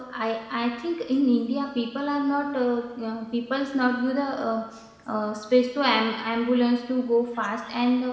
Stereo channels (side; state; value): both; identical; correlation 1.00